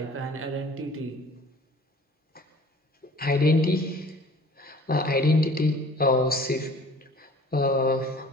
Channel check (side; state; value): both; normal; correlation 0.49